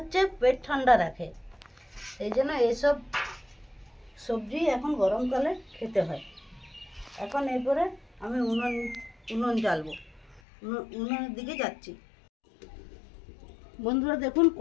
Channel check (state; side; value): drops out; right; at 10.4 s